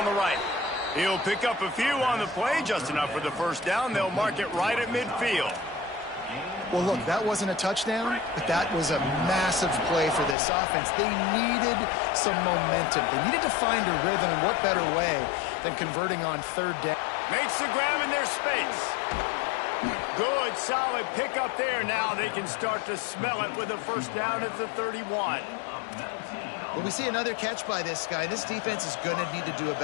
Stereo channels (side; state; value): right; drops out; at 10.4 s